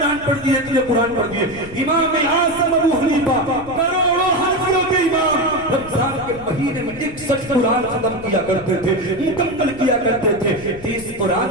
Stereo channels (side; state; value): left; noise; rumble, 18 dB below the sound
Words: پڑھ دیے، اتنے قرآن پڑھ دیے۔ امام اعظم ابو حنیفہ کروڑوں حنفیوں کے امام رمضان کے مہینے میں 61 قرآن ختم کیا کرتے تھے، مکمل کیا کرتے تھے۔ 30 قرآن